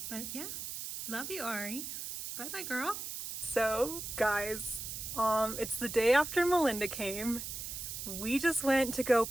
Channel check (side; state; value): right; noise; hiss, 7 dB below the sound